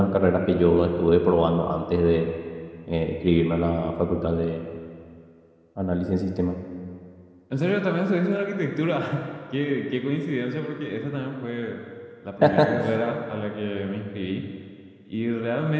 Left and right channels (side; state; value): both; identical; correlation 1.00